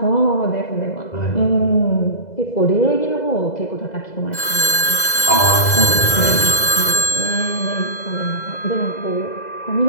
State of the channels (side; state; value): right; late; 2.0 ms